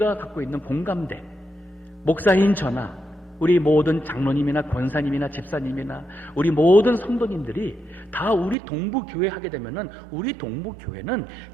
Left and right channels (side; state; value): left; drops out; at 8.6 s